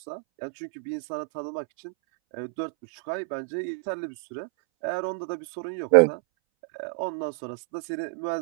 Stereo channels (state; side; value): silent; left; 59 dB below the other